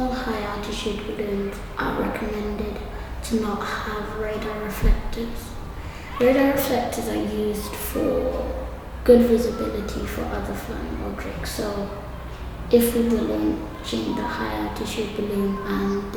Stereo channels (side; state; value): both; identical; correlation 1.00